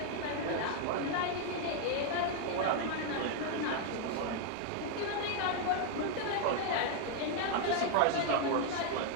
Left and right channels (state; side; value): different; both; correlation 0.00